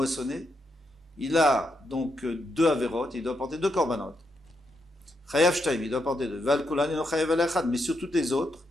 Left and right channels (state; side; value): normal; both; correlation 0.81